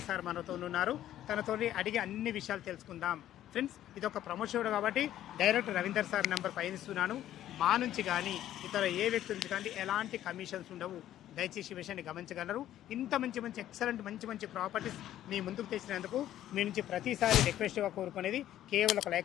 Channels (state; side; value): quieter; right; 12.4 dB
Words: సార్ మనతో ఉన్నారు. తనతో అడిగి అన్ని విషయాలు తెలుసుకుందాం. ఫ్రెండ్స్, ఇది ఒక ప్రమోషన్ కాబట్టి డైరెక్ట్ రవీందర్ సార్ నెంబర్ పైన ఇస్తున్నాను. మా నుంచి కానీ ఇతర ఏ వ్యక్తి నుంచి కానీ ఎలాంటి కమిషన్స్ ఉండవు. దయచేసి విషయాన్ని గమనించగలరు. ఇంత మంచి ఎక్సలెంట్ మంచి ప్రాపర్టీస్ మీ ముందుకు తెచ్చినందుకు మీ నుంచి ప్రతిసారి రిక్వెస్ట్గా కోరుకునేది కేవలం ఒక